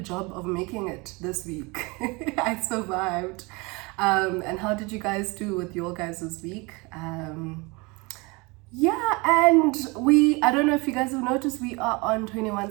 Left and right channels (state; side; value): quieter; left; 26.6 dB